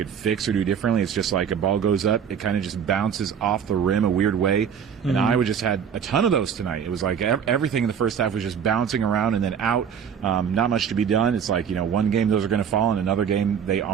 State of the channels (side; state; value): left; quieter; 7.7 dB